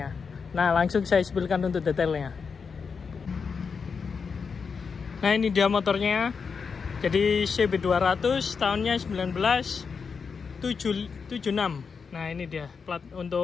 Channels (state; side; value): quieter; right; 5.6 dB